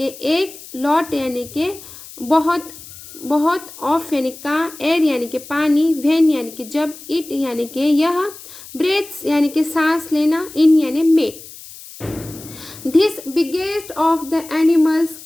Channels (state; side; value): noise; left; hiss, 17 dB below the sound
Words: एक, लॉट यानी कि बहुत बहुत, ऑफ यानी का, एयर यानी कि पानी, व्हेन यानी कि जब, इट यानी कि यह, ब्रेथ्स यानी कि सांस लेना, इन यानी में। This biggest of the animals